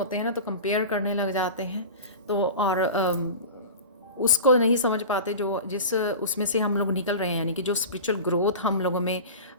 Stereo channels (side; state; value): both; inverted; correlation -0.32